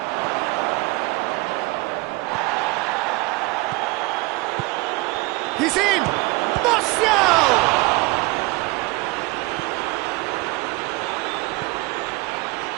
He's in! Martial!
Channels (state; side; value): quieter; left; 23.2 dB